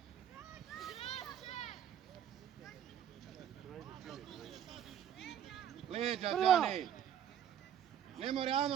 Leđa, Džane! Ne mora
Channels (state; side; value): quieter; left; 9.5 dB